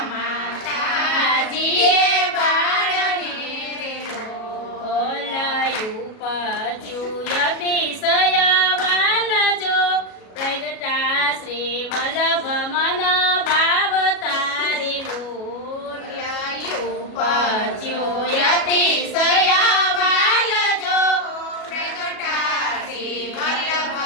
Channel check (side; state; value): right; late; 37 ms